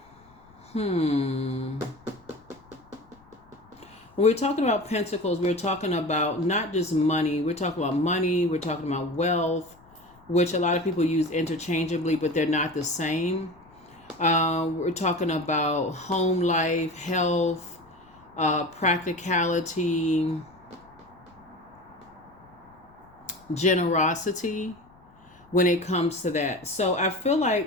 when we're talking about pentacles, we're talking about not just money. We're talking about money. We're talking about wealth, which a lot of people use interchangeably, but they're not the same. We're talking about home life, health, practicality, generosity when it comes to that. So I feel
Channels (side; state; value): left; noise; rumble, 28 dB below the sound